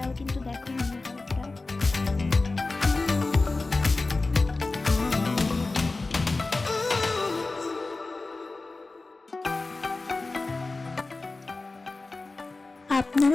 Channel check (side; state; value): right; quieter; 3.5 dB